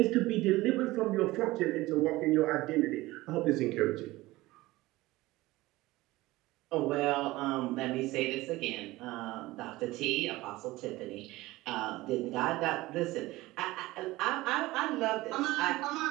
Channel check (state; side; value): quieter; left; 19.0 dB